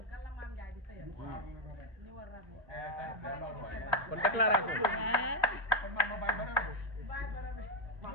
kan la Mame Ndiaye di sëyal ni war rab kon déclaration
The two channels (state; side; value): normal; both; correlation 0.05